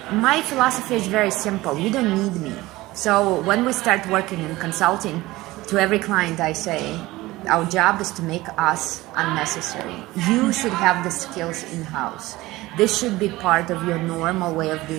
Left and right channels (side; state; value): left; quieter; 18.9 dB